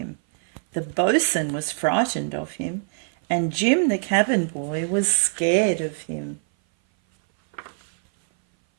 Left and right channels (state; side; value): silent; left; 58 dB below the other